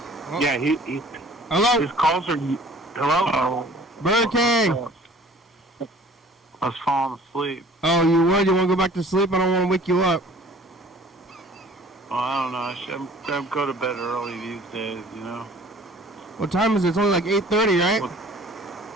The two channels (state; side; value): normal; both; correlation 0.50